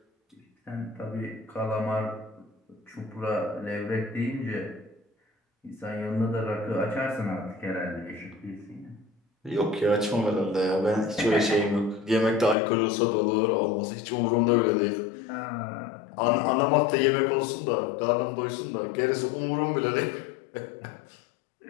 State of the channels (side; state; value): right; drops out; at 12.6 s